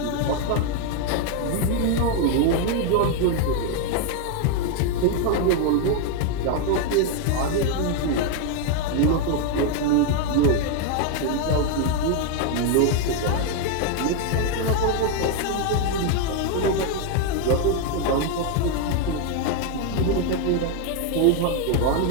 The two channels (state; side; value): different; both; correlation 0.01